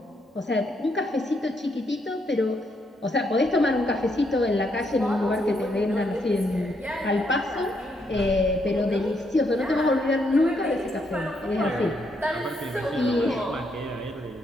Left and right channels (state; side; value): normal; both; correlation 0.76